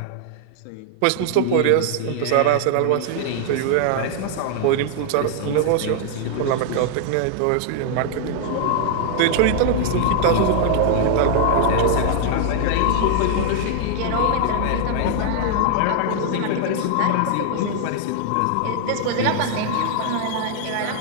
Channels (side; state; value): both; different; correlation 0.00